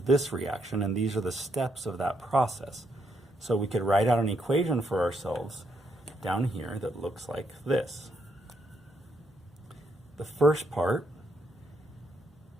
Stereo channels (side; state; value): both; normal; correlation 0.77